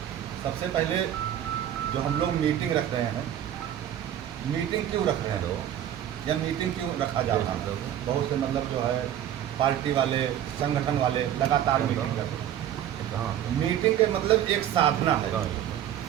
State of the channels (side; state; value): left; quieter; 10.9 dB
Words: पहले जो हम लोग मीटिंग रख रहे हैं, मीटिंग क्यों रख रहे हैं या मीटिंग क्यों रखा जा रहा है? बहुत से मतलब जो है पार्टी वाले, संगठन वाले लगातार मीटिंग करते हैं। मीटिंग के मतलब एक साधना है।